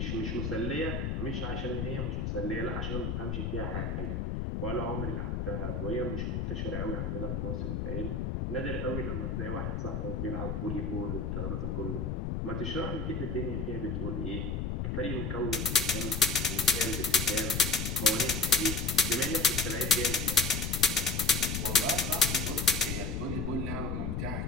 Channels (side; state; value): left; noise; rumble, 1 dB below the sound